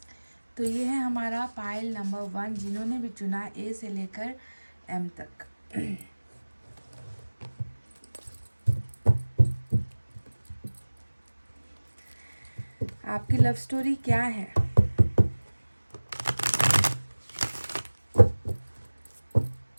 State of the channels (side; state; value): both; inverted; correlation -1.00